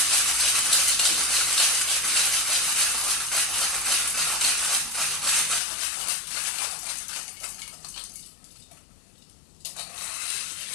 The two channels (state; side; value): drops out; right; at 5.6 s